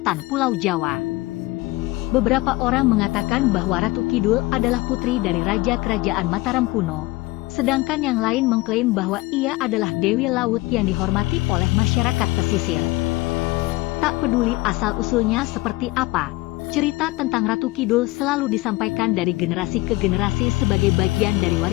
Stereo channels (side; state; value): right; quieter; 20.5 dB